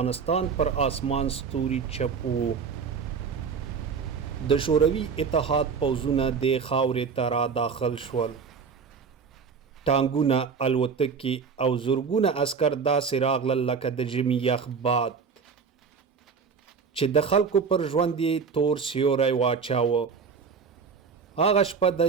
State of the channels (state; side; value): quieter; left; 5.7 dB